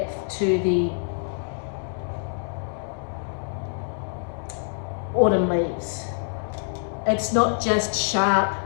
to the autumn leaves. It's not just sharp,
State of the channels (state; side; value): silent; right; digital silence